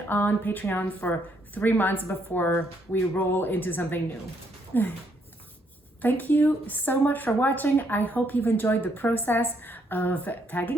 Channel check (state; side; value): normal; both; correlation 0.72